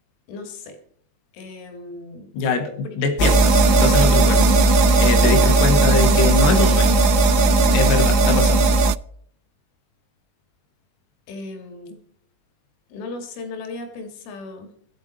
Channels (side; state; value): right; late; 21 ms